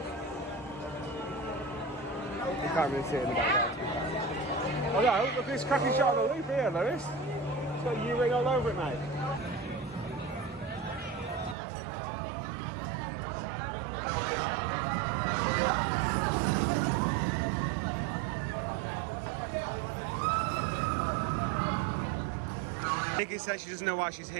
You can't really see it in the background. Oh no, look at this cracking shot of the loop here, Lewis. It's got U-ring all over it, mate. Nikki says she doesn't know why she's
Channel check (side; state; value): left; drops out; at 11.6 s